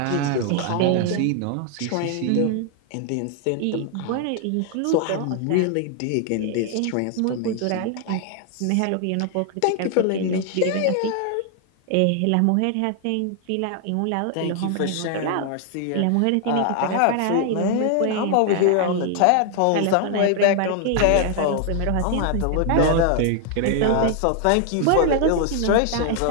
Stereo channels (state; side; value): different; both; correlation 0.00